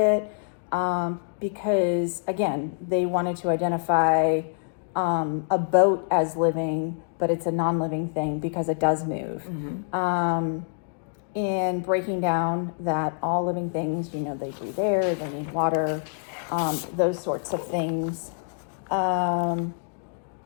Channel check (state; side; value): silent; right; digital silence